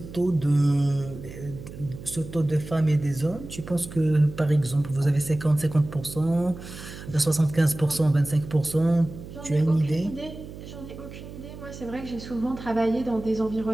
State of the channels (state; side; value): noise; right; hum, 13 dB below the sound